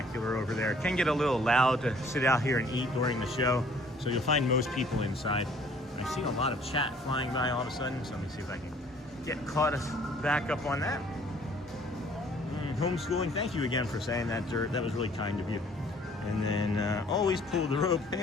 over there. It can get a little loud to sit out here and eat during the show, so you'll find most people inside. I've seen a lot of chat flying by all of a sudden, so let me see if I can get caught back up on that. Homeschooling, thank you again for saying that, Dirt. That was really kind of you. And then always pull the rope.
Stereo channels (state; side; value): normal; both; correlation 0.57